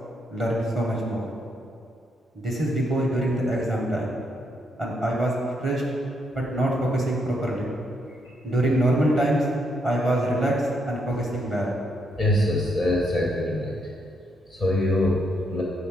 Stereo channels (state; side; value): normal; both; correlation 0.77